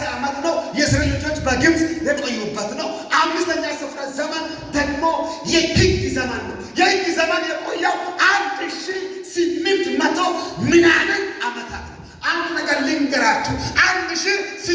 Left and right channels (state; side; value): identical; both; correlation 1.00